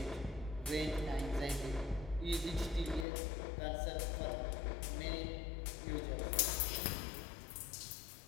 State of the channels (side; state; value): right; drops out; at 3.1 s